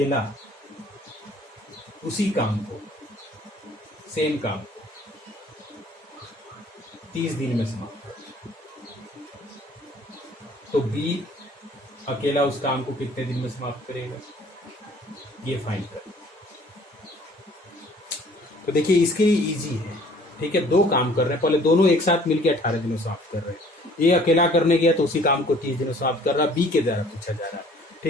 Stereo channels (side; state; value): both; normal; correlation 0.55